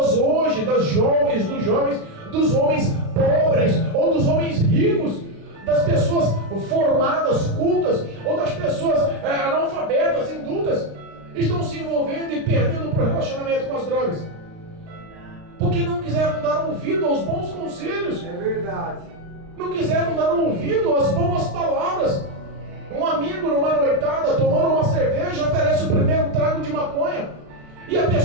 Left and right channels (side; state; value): left; late; 36 ms